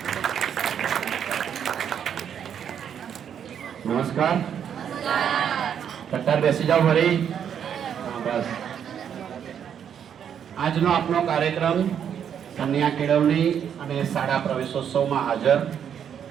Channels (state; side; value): quieter; left; 8.5 dB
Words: નમસ્કાર. કટ્ટાર બેસી જાઓ ફરી. બસ. આજનો આપણો કાર્યક્રમ કન્યા કેળવણી અને શાળા પ્રવેશોત્સવમાં હાજર